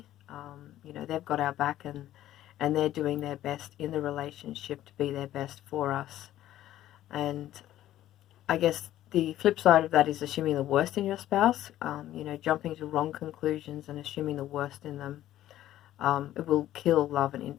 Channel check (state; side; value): quieter; right; 13.3 dB